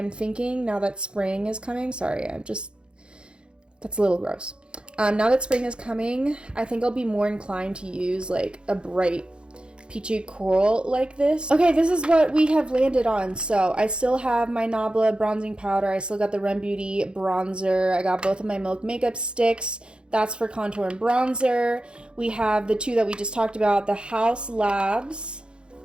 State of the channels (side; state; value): left; late; 0.054 ms